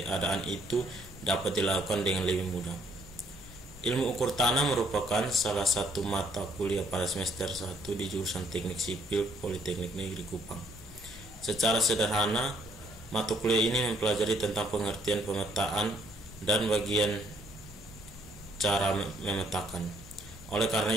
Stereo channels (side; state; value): both; normal; correlation 0.67